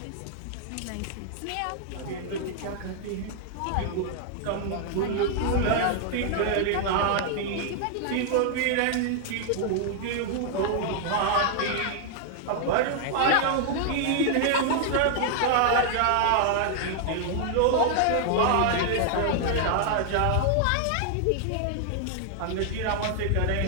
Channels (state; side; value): different; both; correlation 0.00